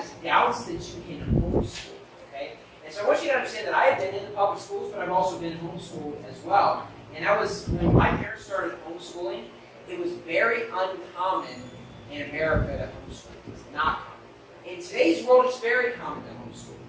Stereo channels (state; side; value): identical; both; correlation 1.00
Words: is doubts that you can homeschool. Okay? And so I want you to understand that I have been in the public schools, but I've also been homeschooled as well. And that was when my parents started homeschooling. It was very uncommon in America to homeschool. It was not common. In today's world, it's very common to homeschool